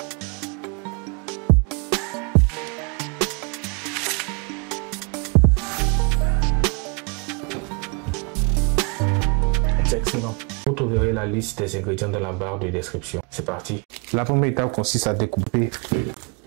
C'est excellent. Vous trouverez la liste des ingrédients dans la barre de description. C'est parti. La première étape consiste à découper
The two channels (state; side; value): quieter; left; 33.5 dB